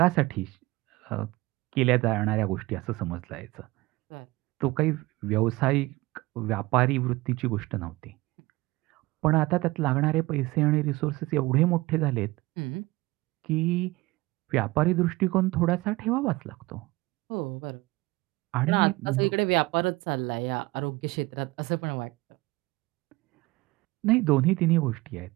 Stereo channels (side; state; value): left; quieter; 20.8 dB